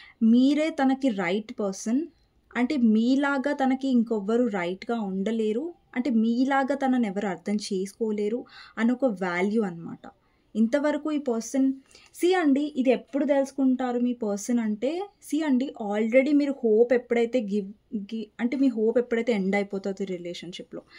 మీరే తనకి రైట్ పర్సన్. అంటే మీలాగా తనకి ఇంకొవ్వరు రైట్‌గా ఉండలేరు. అంటే మీలాగా తనని ఎవరు అర్థం చేసుకోలేరు అని ఒక వాల్యూ అనమాట. ఇంతవరకు ఈ పర్సన్ అండి ఇది ఎప్పుడు తెలుసుకుంటారు మీ పర్సన్ అంటే అండి ఆల్రెడీ మీరు హోప్ ఎప్పుడైతే అంటే మీ హోప్ ఎప్పుడైతే ఎండ్ అయిపోతుంది రిలేషన్‌షిప్‌లో.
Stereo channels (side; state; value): both; identical; correlation 1.00